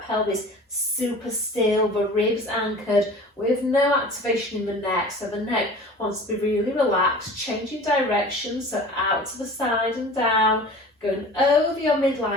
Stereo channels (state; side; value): normal; both; correlation 0.41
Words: pelvis super still, the ribs anchored, with no activation in the neck. So the neck wants to be really relaxed, changing direction, so out to the side and down, going over your